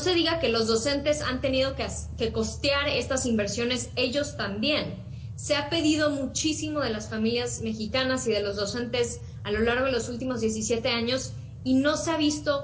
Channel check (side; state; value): both; identical; correlation 1.00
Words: diga que los docentes han tenido que costear estas inversiones ellos también. Se ha pedido muchísimo de las familias mexicanas y de los docentes a lo largo de los últimos 17 años y no se ha